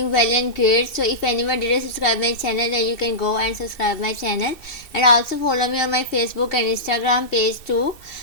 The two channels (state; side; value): late; right; 2.6 ms